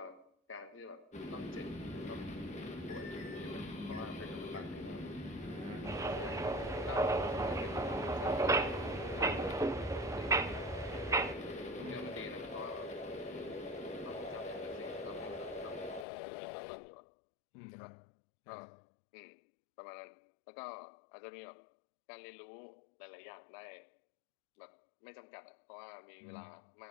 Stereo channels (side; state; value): right; drops out; at 16.1 s